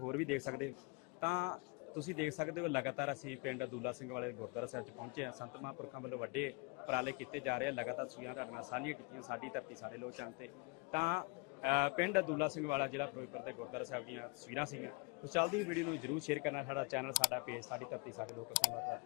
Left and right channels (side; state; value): right; quieter; 29.6 dB